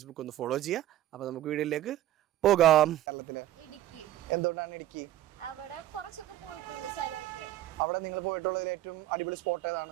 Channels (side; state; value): left; quieter; 13.6 dB